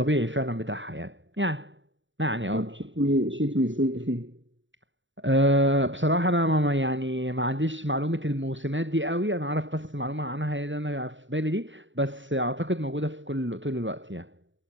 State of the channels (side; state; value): left; late; 0.55 ms